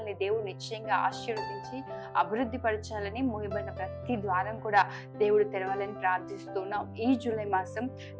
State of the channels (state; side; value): identical; both; correlation 1.00